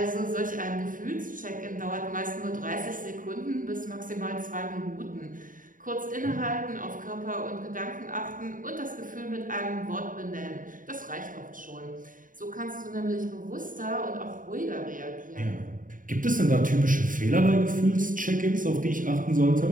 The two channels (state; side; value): late; left; 0.39 ms